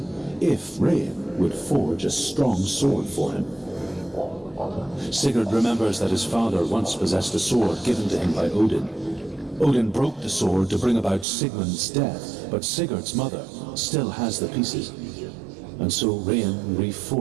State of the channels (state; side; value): drops out; left; at 11.2 s